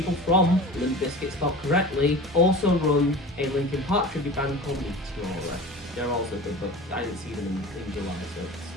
from Limp Bizkit spelled correctly also run a Linkin Park tribute band called Meteora. They're also good, but I didn't see them in July, so it's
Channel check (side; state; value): both; normal; correlation 0.36